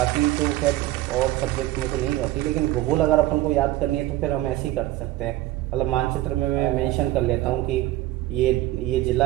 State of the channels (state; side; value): quieter; left; 16.0 dB